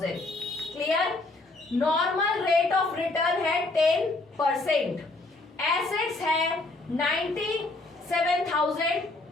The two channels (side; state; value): right; quieter; 3.1 dB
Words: Clear? Normal rate of return है 10%, एसेट्स है